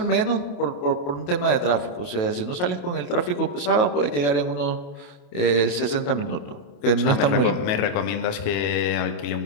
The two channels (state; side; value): late; right; 28 ms